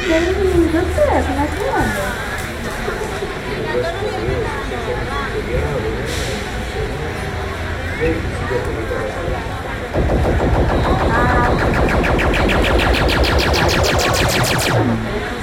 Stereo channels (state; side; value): identical; both; correlation 1.00